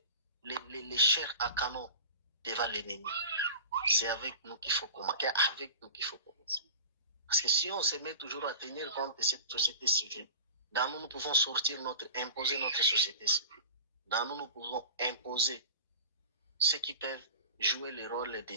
les chairs à canon devant l'ennemi. C'est avec nous qu'il faut commencer. Parce que si on se met toujours à tenir compte de cette société civile, dans nous pouvons imposer notre société civile. Dans nous pouvons imposer ceux qui peuvent jouer le rôle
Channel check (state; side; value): inverted; both; correlation -0.36